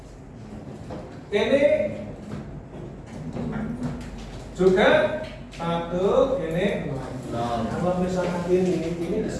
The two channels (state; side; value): identical; both; correlation 1.00